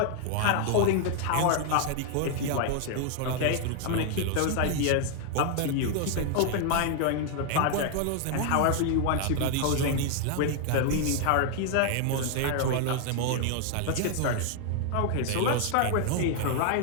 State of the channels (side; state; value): both; different; correlation 0.00